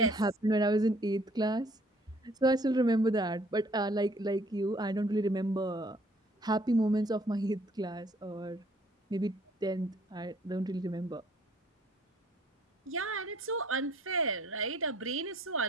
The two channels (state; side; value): normal; both; correlation 0.60